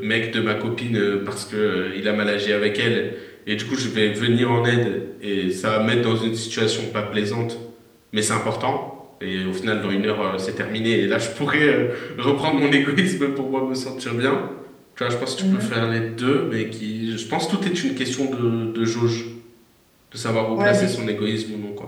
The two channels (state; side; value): identical; both; correlation 1.00